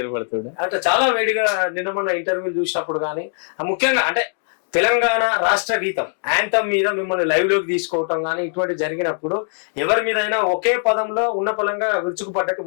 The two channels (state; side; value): silent; right; digital silence